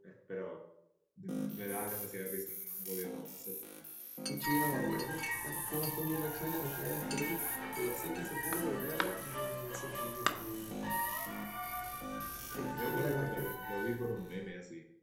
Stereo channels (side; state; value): both; identical; correlation 1.00